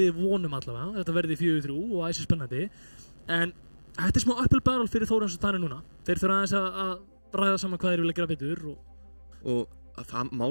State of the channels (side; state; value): both; inverted; correlation -1.00